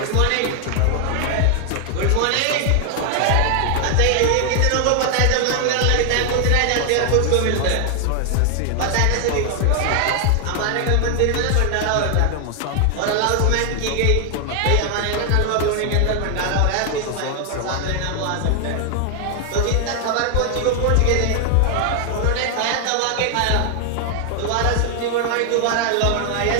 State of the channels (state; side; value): different; both; correlation 0.00